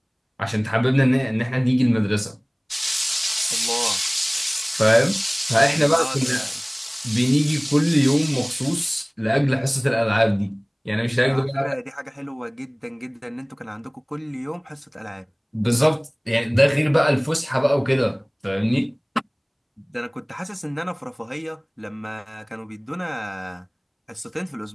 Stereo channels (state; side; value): identical; both; correlation 1.00